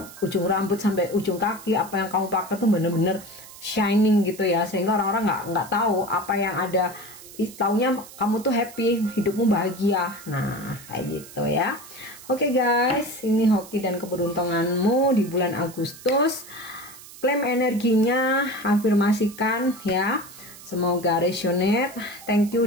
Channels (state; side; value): noise; right; hiss, 18 dB below the sound